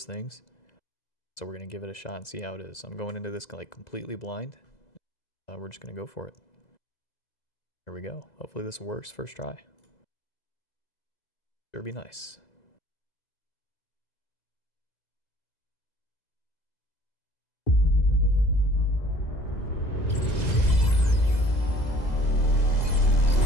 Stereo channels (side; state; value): right; late; 2.0 ms